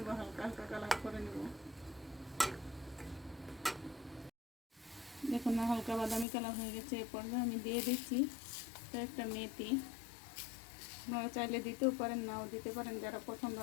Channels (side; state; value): right; drops out; at 6.2 s